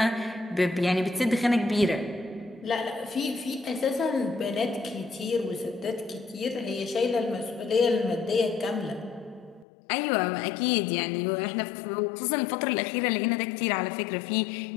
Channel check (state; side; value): drops out; right; at 9.7 s